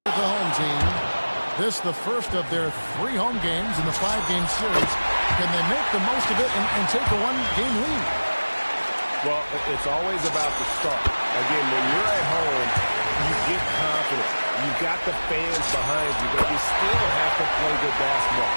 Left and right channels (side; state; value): both; inverted; correlation -1.00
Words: at the home team. This the first of their 3 home games in the 5-game series. Can they make the most of it and take a 1-game lead? Well, it's always about the start. Again, when you're at home, you get confident. You've got the fans behind you, but you still have to play good basketball.